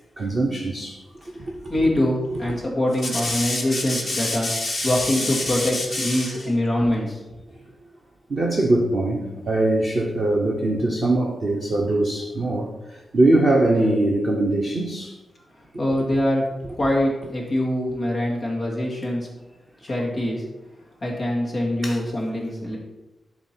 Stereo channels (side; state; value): both; normal; correlation 0.89